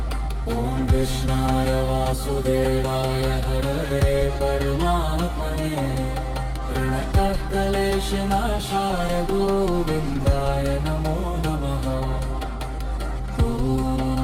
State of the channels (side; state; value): both; identical; correlation 1.00